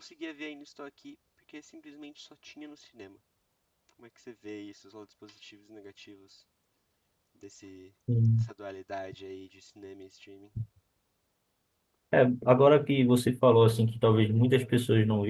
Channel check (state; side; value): identical; both; correlation 1.00